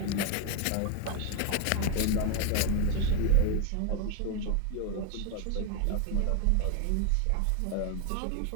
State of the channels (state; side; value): different; both; correlation 0.01